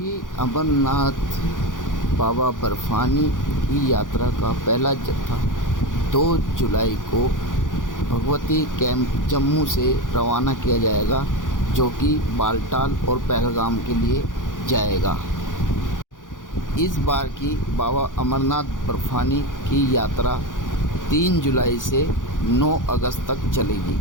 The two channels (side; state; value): right; late; 0.88 ms